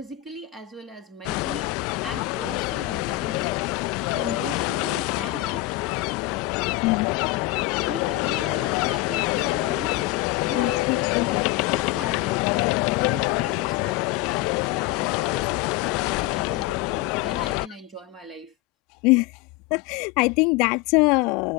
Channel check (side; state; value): right; quieter; 17.5 dB